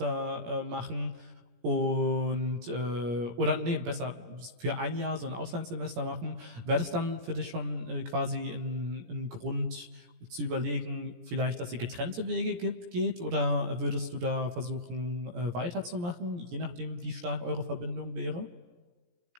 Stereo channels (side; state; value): left; late; 17 ms